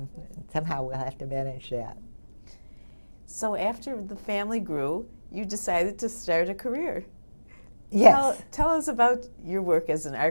Somehow we'll have to manage that. So after the family grew, you decided to start a career. Yes. Tell us about your work as an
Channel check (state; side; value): inverted; both; correlation -1.00